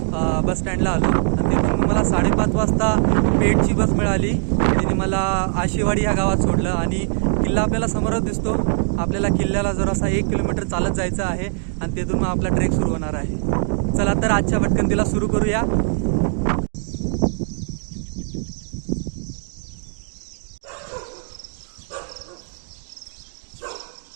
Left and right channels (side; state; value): left; silent; digital silence